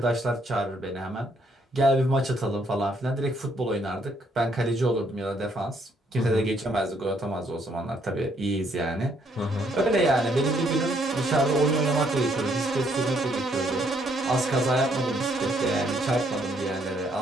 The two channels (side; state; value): both; normal; correlation 0.70